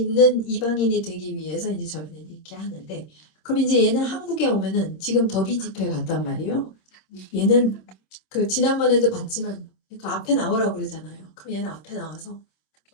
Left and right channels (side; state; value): right; late; 26 ms